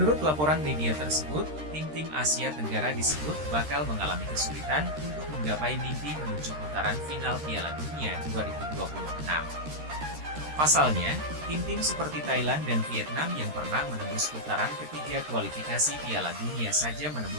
laporan media tersebut, tim-tim Asia Tenggara disebut bakal mengalami kesulitan untuk menggapai mimpi menuju putaran final Piala Dunia 2026. Pasalnya, tim-tim seperti Thailand dan Vietnam yang pernah menembus putaran ketiga kualifikasi Piala Dunia saja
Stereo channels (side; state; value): left; late; 13 ms